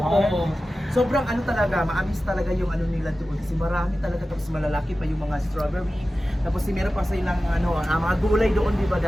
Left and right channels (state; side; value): normal; both; correlation 0.95